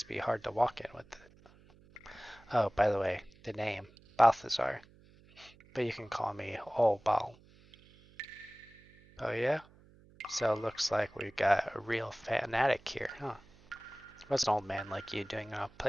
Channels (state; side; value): noise; right; hum, 26 dB below the sound